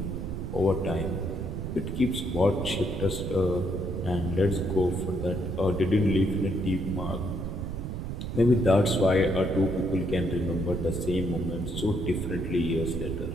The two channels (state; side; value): noise; right; rumble, 5 dB below the sound